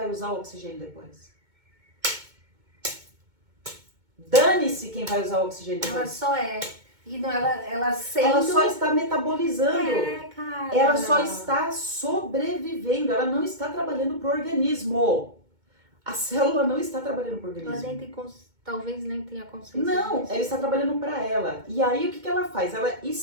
usar o oxigênio depois. Dane-se quem vai usar o oxigênio depois. Ela só é. E não, ela sendo... Ela só está metabolizando. Cara. Ela só está sobrevivendo. Ela não está trabalhando para o organismo. A célula não está trabalhando para o organismo. Ela nem tem talvez nem tenha consciência. Não, ela está trabalhando para ela. E aí o que ela faz? Ela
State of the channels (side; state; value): left; late; 2.2 ms